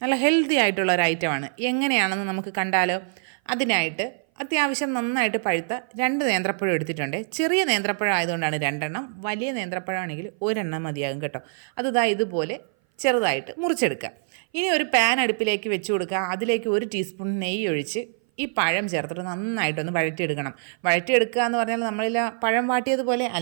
നല്ല ഹെൽത്തി ആയിട്ടുള്ള ഒരു ഐറ്റമാണ്. എങ്ങനെയാണെന്ന് നമുക്ക് കണ്ടാലോ? അതിനായിട്ട് അത്യാവശ്യം നന്നായിട്ട് പഴുത്ത 2 നേന്ത്രപ്പഴം എടുത്തിട്ടുണ്ട്. ചെറിയ നേന്ത്രപ്പഴം ആയതുകൊണ്ടാണ് 2 എണ്ണം, വലിയ നേന്ത്രപ്പഴമാണെങ്കിൽ 1 എണ്ണം മതിയാകും കേട്ടോ. അത് ഇതുപോലെ ചെറുതായിട്ട് മുറിച്ചെടുക്കുക. ഇനി ഒരു പാൻ അടുപ്പിലേക്ക് വെച്ച് കൊടുക്കുക. അതിലേക്ക് 1 ടീസ്പൂൺ നെയ്യ് ഒഴിച്ച് ഈ പഴം ചേർത്തിട്ട് നന്നായിട്ടൊന്ന് വഴറ്റിയെടുക്കണം. വഴറ്റിയെടുക്കുക എന്ന് പറഞ്ഞാൽ നമ്മളിൽ പഴം വാട്ടിയതുപോലെ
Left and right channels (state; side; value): silent; left; 58 dB below the other